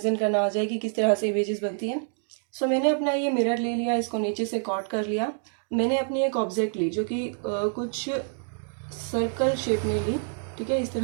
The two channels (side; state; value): left; silent; 60 dB below the other